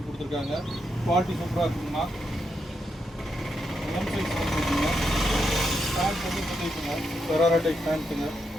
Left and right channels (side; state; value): both; normal; correlation 0.83